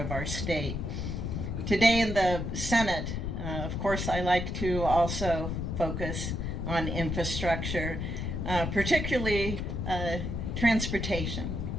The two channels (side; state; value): left; noise; rumble, 3 dB below the sound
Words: our state. Today in the Senate, of course, I like to also focus on infrastructure, particularly transportation,